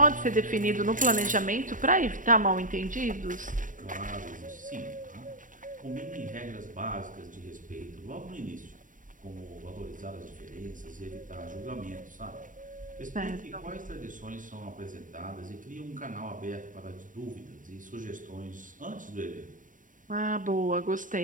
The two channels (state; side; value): late; left; 0.38 ms